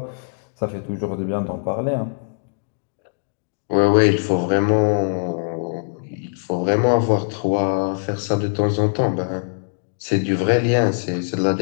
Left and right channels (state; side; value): silent; right; digital silence